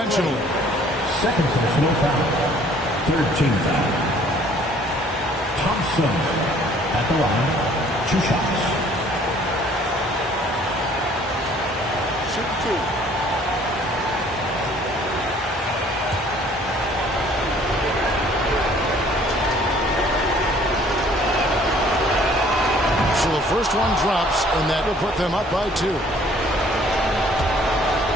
Second personal foul. Third team foul. Thompson at the line. 2 shots. Shoot 2. So the first one drops, and that will put them up by 2.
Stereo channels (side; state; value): both; normal; correlation 0.57